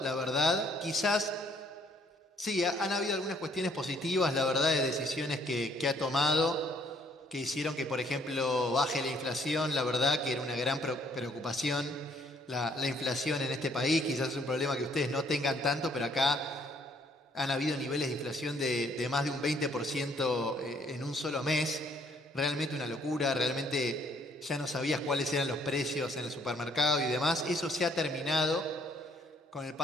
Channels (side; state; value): both; normal; correlation 0.64